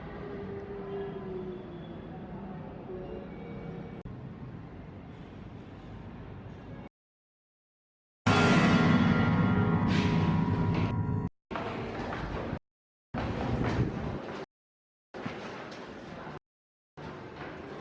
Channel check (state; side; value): identical; both; correlation 1.00